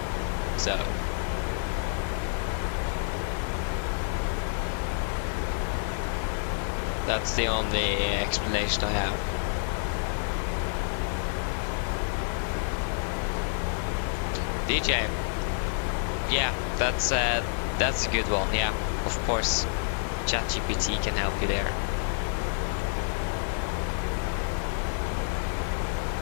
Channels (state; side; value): silent; right; digital silence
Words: so. That's the only explanation I have. DJ. Yeah, that's a good one. Yeah, of course. ChatGPT can help you there.